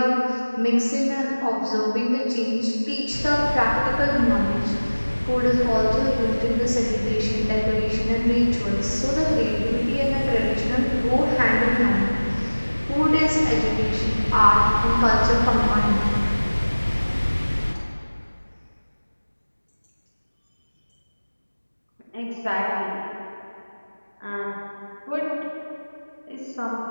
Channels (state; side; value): inverted; both; correlation -1.00